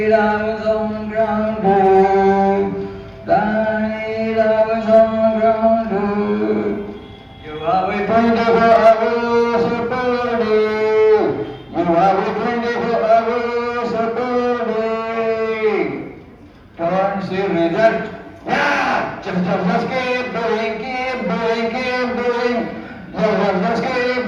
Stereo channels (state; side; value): identical; both; correlation 1.00